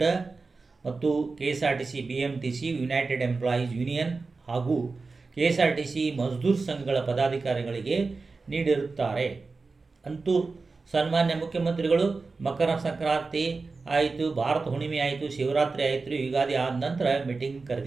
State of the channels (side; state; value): left; quieter; 4.1 dB